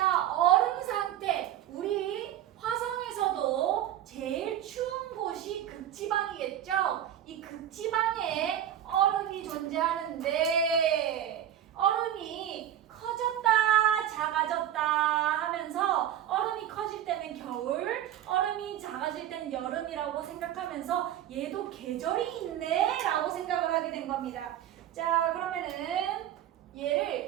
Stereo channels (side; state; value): left; quieter; 11.1 dB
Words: 얼음 상태. 우리 화성에서도 제일 추운 곳이 극지방이겠죠? 이 극지방에 얼음이 존재하는데 얼음이 커졌다 작아졌다 하면서 얼음이 커질 때는 겨울, 얼음이 작아질 때는 여름이라고 생각하면서 얘도 계절이 있네 라고 생각을 하게 된 겁니다. 자, 그러면은